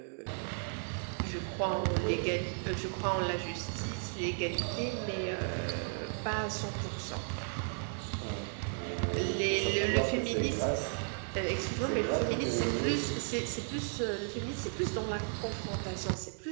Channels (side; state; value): left; silent; 55 dB below the other